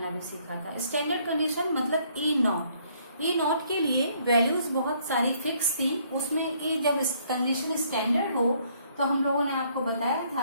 भी सीखा था। स्टैंडर्ड कंडीशन मतलब ई नॉट के लिए वैल्यूज बहुत सारी फिक्स थी। उसमें ई जब कंडीशन स्टैंडर्ड हो तो हम लोगों ने आपको बताया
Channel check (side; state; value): both; inverted; correlation -0.66